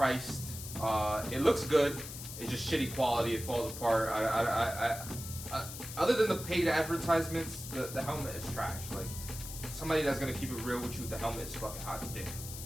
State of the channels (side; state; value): left; noise; hiss, 10 dB below the sound